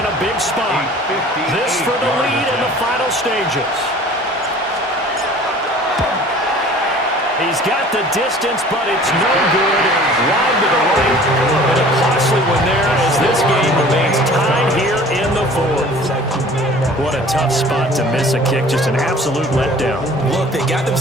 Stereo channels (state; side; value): normal; both; correlation 0.47